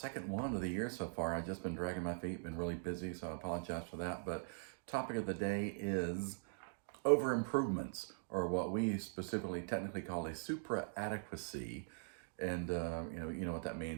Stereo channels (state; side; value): silent; left; digital silence